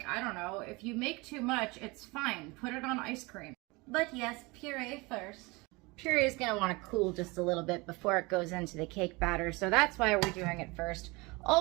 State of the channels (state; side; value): quieter; left; 25.0 dB